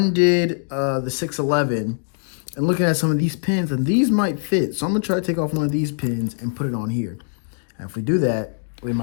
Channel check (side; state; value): right; silent; digital silence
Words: the 611 and looking at some of these pins, and these might fit. So I'm gonna try to take off one of these pins and put it on here. And if we do that, we